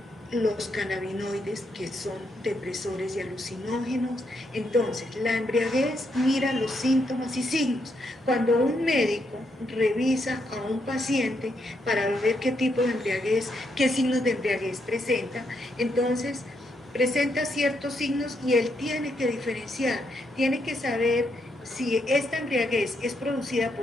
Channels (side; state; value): both; normal; correlation 0.78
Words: los cannabinoides que son depresores y alucinógenos. Entonces, la embriaguez mira los síntomas y signos. Cuando un médico revisa a un paciente para ver qué tipo de embriaguez, qué signos de embriaguez presenta, entonces presenta ciertos signos y él tiene que diferenciar, tiene que saber si esta embriaguez es producida